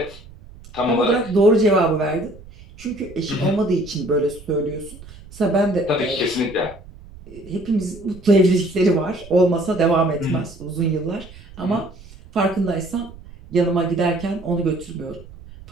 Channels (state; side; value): noise; right; rumble, 19 dB below the sound